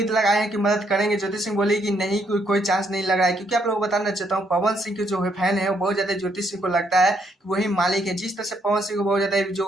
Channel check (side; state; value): both; normal; correlation 0.73